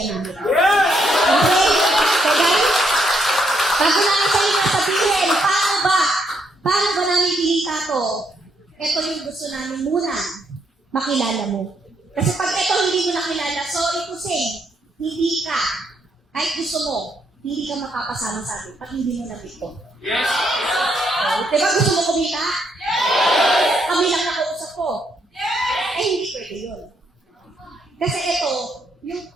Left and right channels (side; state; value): both; normal; correlation 0.75